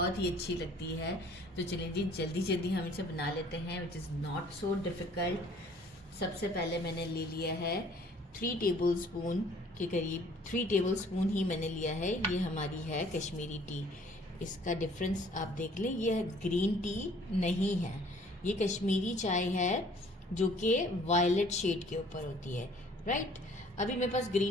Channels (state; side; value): normal; both; correlation 0.55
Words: ही अच्छी लगती है। तो चलिए जी, जल्दी जल्दी हम इसे बना लेते हैं, which is not so difficult. सबसे पहले मैंने ले लिया है 3 टेबल स्पून के करीब, 3 टेबल स्पून ही मैंने लिया है। ये हमारी है कश्मीरी टी। इसका डिफरेंस आप देख लें, ये ग्रीन टी नहीं है, ये कश्मीरी चाय है जो कि वायलेट शेड के ऊपर होती है, राइट। अभी मेरे पास